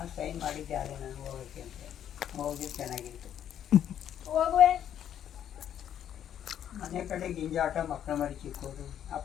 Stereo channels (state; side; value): quieter; right; 10.0 dB